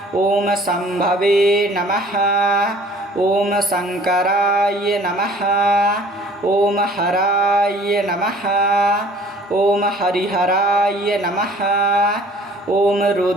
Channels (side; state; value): both; normal; correlation 0.52